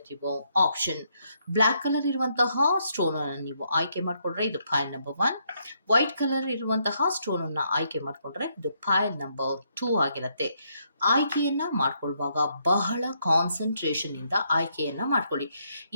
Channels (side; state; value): both; inverted; correlation -0.75